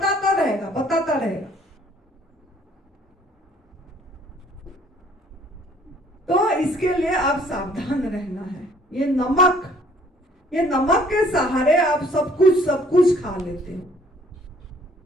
रहेगा। तो इसके लिए आप सावधान रहना है। ये नमक के सहारे आप सब कुछ खा लेते हो।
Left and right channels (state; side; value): normal; both; correlation 0.59